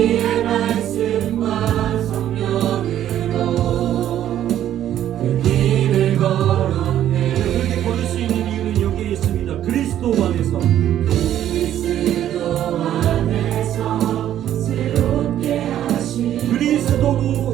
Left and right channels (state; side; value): quieter; left; 11.4 dB